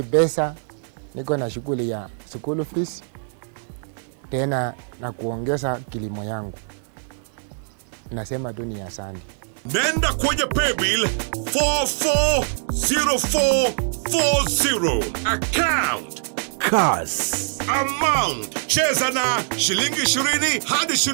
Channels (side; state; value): left; silent; 63 dB below the other